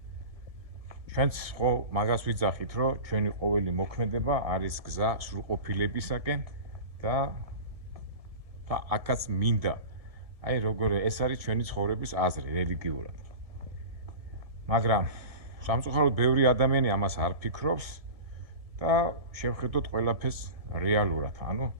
ჩვენც ხო მაგას ვიძახით, რომ ჩვენი ყოველი მოქმედება არის გზა სრულყოფილებისაკენ და აქაც მინდა. აი როგორ ეს არის ჩვენი ცხოვრების აზრი რელიგიურად. მაგრამ სამწუხაროდ ბევრი ადამიანი ამას არ ფიქრობს და შევხედოთ ყველაფერს რეალურად, ანუ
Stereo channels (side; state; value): left; late; 1.7 ms